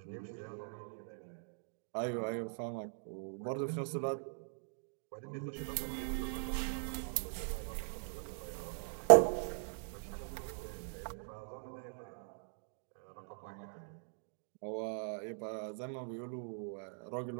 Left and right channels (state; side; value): silent; left; digital silence